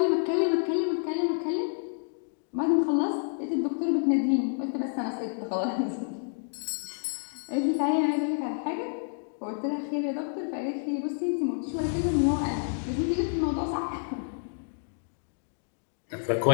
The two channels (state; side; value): silent; right; digital silence